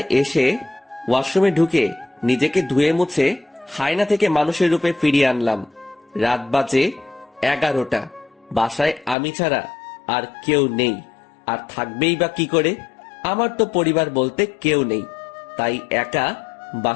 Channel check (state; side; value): drops out; right; at 9.2 s